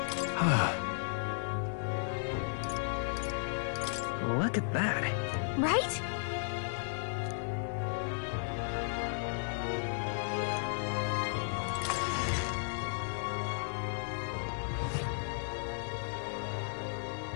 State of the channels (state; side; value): silent; right; digital silence